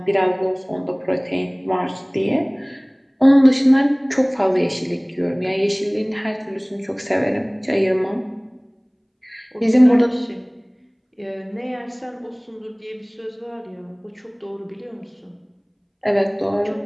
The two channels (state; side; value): identical; both; correlation 1.00